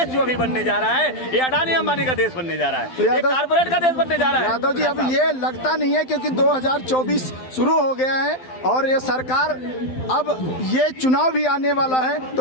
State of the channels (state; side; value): late; right; 12 ms